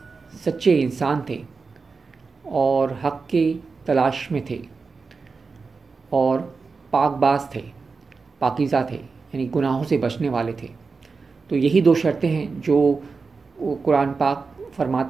سچے انسان تھے اور حق کی تلاش میں تھے اور پاک باز تھے، پاکیزہ تھے، یعنی گناہوں سے بچنے والے تھے۔ تو یہی دو شرطیں ہیں جو قرآن پاک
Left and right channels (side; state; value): left; quieter; 4.6 dB